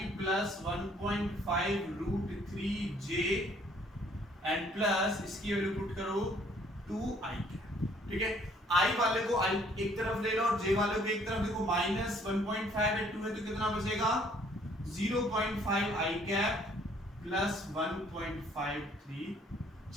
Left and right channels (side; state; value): both; normal; correlation 0.62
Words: plus 1.5 root 3j and plus इसकी वैल्यू पुट करो 2i। ठीक है, i वाले को i एक तरफ ले लो और j वाले को एक तरफ, देखो -1.5 है 2 है तो कितना बचेगा 0.5i cap plus 1.53 j